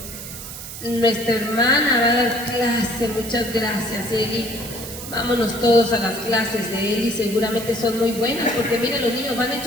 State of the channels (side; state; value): right; noise; hiss, 11 dB below the sound